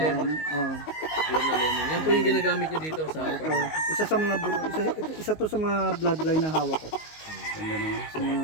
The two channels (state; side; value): late; right; 19 ms